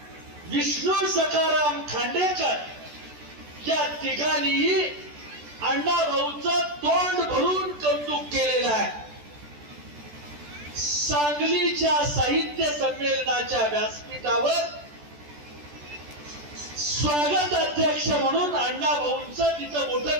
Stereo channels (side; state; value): left; late; 14 ms